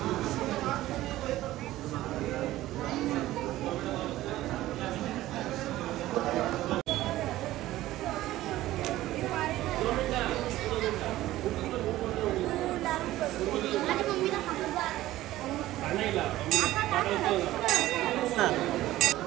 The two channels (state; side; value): quieter; left; 15.6 dB